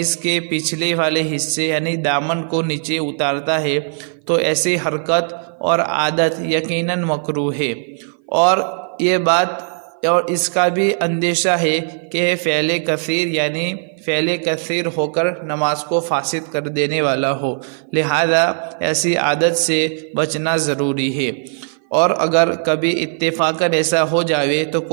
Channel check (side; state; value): left; silent; 57 dB below the other